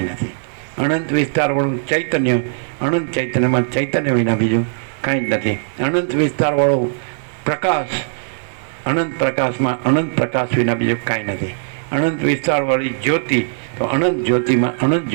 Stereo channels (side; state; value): left; silent; digital silence